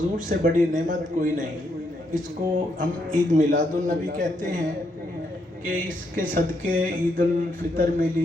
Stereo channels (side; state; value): both; normal; correlation 0.77